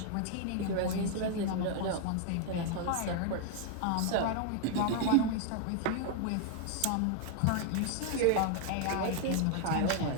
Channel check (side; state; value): both; different; correlation 0.00